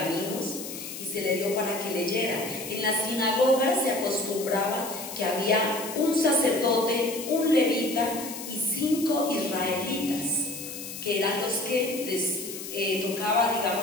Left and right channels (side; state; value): left; noise; hiss, 9 dB below the sound